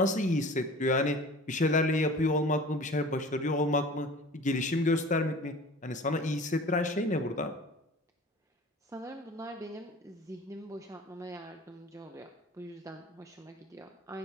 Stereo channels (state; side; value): normal; both; correlation 0.42